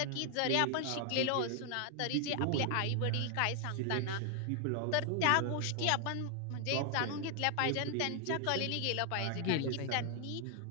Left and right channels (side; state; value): both; different; correlation 0.00